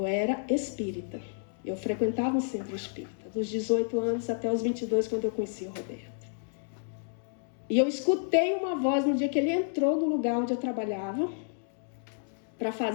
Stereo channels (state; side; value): silent; right; digital silence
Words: era espírita. Eu frequentava um centro espírita, dos 18 anos até os 22, quando eu conheci o Roberto. E eu escutei uma voz no dia que ele entrou no lugar onde eu trabalhava para